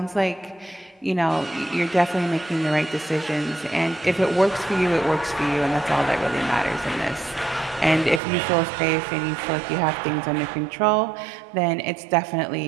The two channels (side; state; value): left; drops out; at 8.2 s